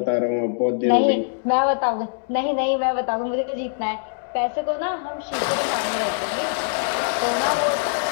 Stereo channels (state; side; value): silent; right; digital silence